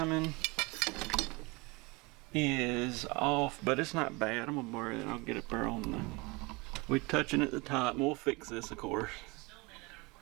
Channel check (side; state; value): left; quieter; 25.5 dB